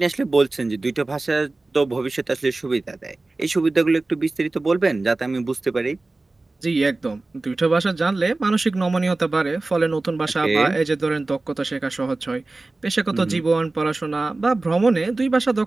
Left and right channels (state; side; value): quieter; left; 3.2 dB